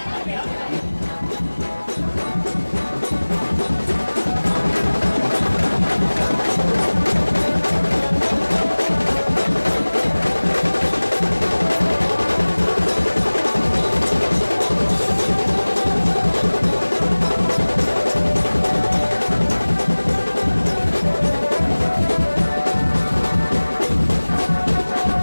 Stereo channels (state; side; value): inverted; both; correlation -1.00